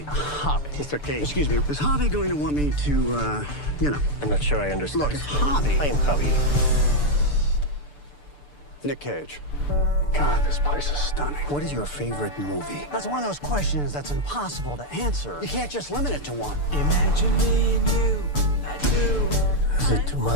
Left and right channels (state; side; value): late; right; 6.8 ms